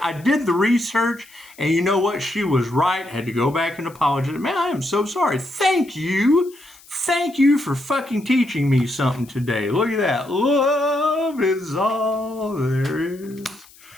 I did the research, and you know what? She was right. Had to go back and apologize. Man, I am so sorry. Thank you. Thank you for fucking teaching me something today. Look at that. Love is all there is.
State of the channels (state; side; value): noise; left; hiss, 25 dB below the sound